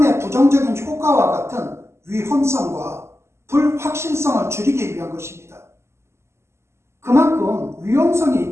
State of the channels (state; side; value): late; left; 0.13 ms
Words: 부정적인 효과와 같은 위험성과 불확실성을 줄이기 위한 것입니다. 그만큼 위험성이